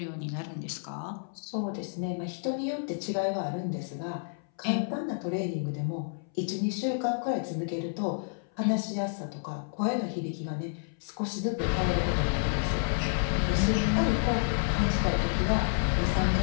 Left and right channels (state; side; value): silent; right; 58 dB below the other